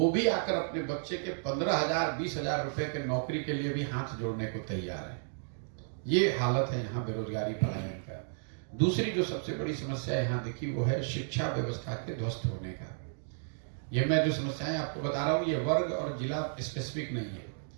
भी आकर अपने बच्चे के 15,000, 20,000 रुपए के नौकरी के लिए भी हाथ जोड़ने को तैयार है। ये हालत है यहाँ बेरोजगारी पलायन का। दूसरी जो सबसे बड़ी समस्या यहाँ दिखी वो है शिक्षा व्यवस्था के ध्वस्त होने का। ये मैं जो समस्याएं आपको बता रहा हूँ ये वर्ग और जिला स्पेसिफिक नहीं है,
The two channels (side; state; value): left; silent; digital silence